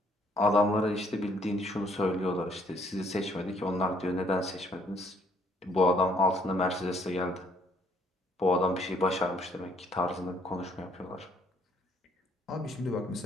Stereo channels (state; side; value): normal; both; correlation 0.65